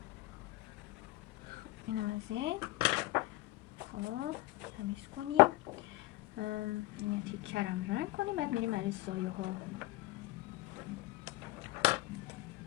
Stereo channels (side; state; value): right; quieter; 18.9 dB